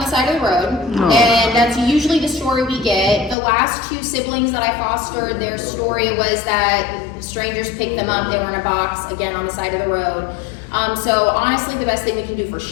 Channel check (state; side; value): drops out; right; at 3.4 s